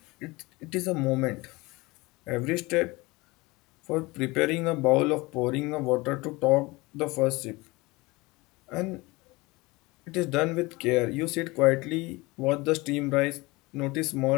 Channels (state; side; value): quieter; right; 23.0 dB